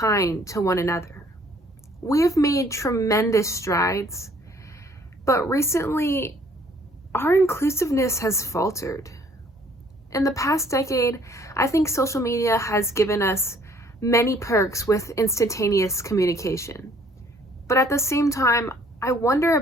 to one another. We have made tremendous strides, but recently, our inclusiveness has faltered. In the past decade, I think social media has given us many perks with instantaneous communication. But at the same time, I wonder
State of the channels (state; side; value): normal; both; correlation 0.60